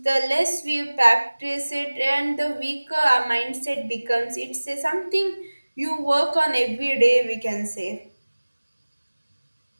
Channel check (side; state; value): both; inverted; correlation -1.00